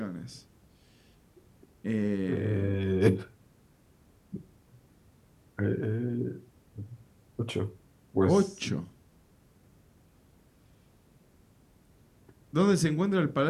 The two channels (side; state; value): both; identical; correlation 1.00